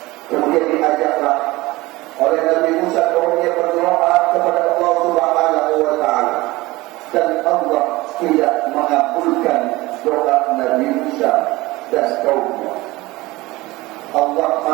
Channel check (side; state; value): left; quieter; 20.3 dB